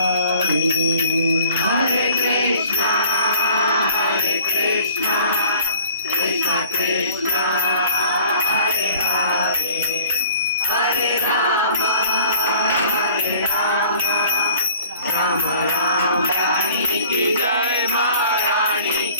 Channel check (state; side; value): inverted; both; correlation -0.52